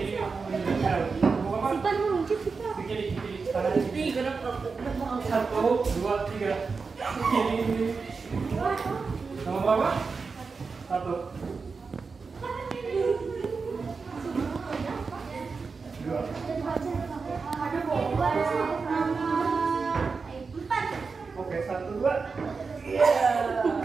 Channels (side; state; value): left; quieter; 4.7 dB